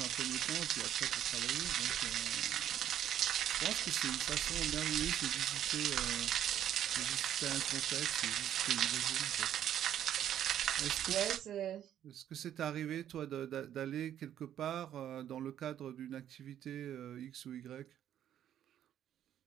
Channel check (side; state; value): left; quieter; 10.7 dB